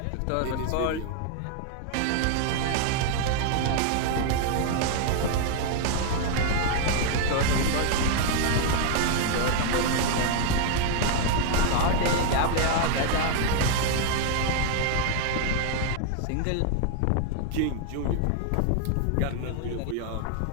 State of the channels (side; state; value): both; different; correlation 0.00